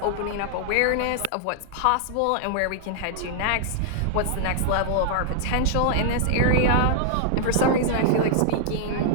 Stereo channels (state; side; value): different; both; correlation -0.01